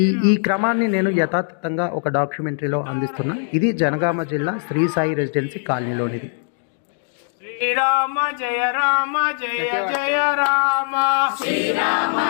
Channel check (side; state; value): right; silent; 65 dB below the other